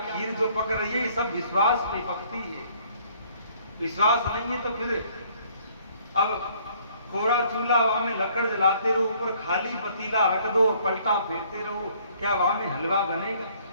जो पक रही है, सब विश्वास पे पकती है। विश्वास नहीं है तो फिर अब कोरा चूल्हा वहां में लकड़ जलाते रहो, ऊपर खाली पतीला रख दो और पलटा फेरते रहो, क्या वहां में हलवा बनेगा?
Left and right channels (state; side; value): inverted; both; correlation -0.61